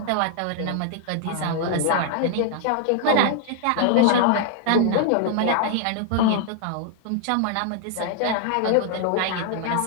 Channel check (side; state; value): both; different; correlation 0.00